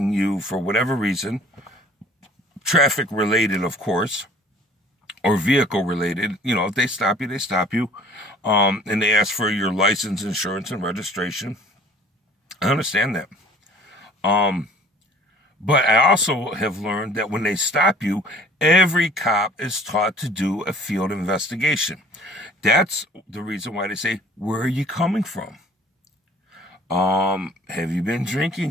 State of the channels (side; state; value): both; normal; correlation 0.52